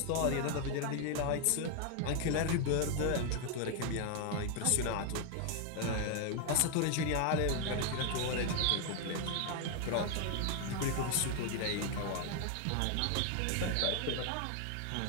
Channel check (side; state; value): both; different; correlation 0.01